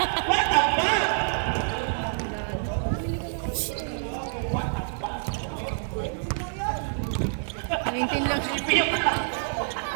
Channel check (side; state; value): left; silent; 60 dB below the other